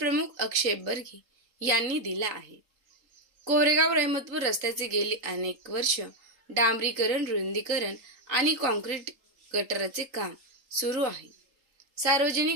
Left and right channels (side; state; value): left; late; 3.8 ms